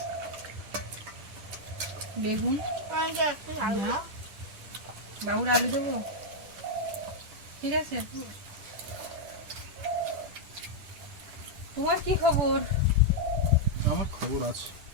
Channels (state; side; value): late; left; 10 ms